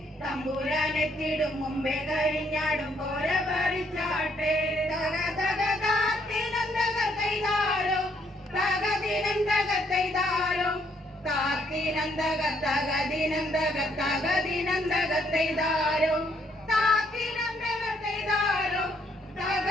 തമ്പുരാനെത്തിടും മുമ്പേ കരിഞ്ഞാടും കോര പറിച്ചാട്ടെ തക തക താത്തിനന്തക കൈതാരോ തകതിനന്തക കൈതാരോ താത്തിനന്തക തകതിനന്തക തകതിനന്തക കൈതാരോ താത്തിനന്തക കൈതാരോ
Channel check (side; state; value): both; normal; correlation 0.70